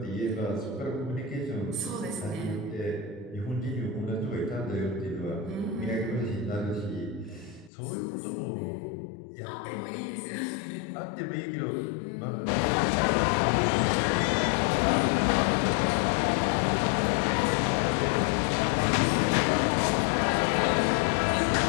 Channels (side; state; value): right; drops out; at 7.7 s